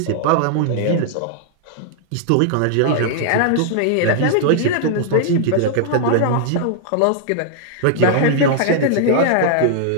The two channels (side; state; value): both; different; correlation -0.01